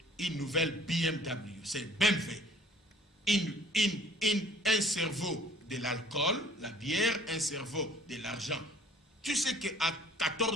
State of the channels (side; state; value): both; normal; correlation 0.54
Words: une nouvelle BMW, c'est BMW. Un cerveau de l'alcool, la bière, un cerveau de l'argent. Tu sais qu'à